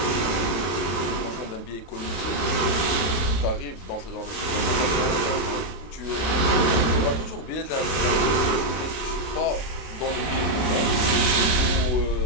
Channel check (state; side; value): late; right; 31 ms